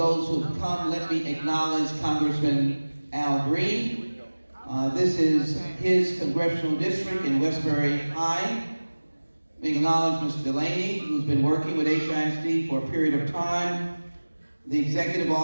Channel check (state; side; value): inverted; both; correlation -1.00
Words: who have come. Let me acknowledge Congressman Al Green. This is his congressional district in Westbury High. Let me acknowledge Mr. Delaney, who's been working with HISD for a period of time. The executive